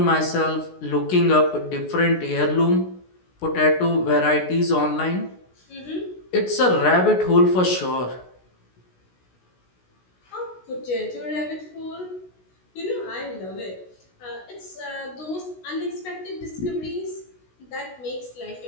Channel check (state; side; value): late; right; 16 ms